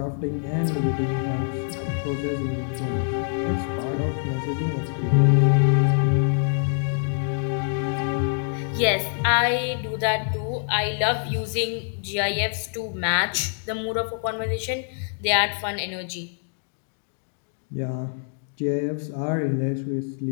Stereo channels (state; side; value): silent; right; digital silence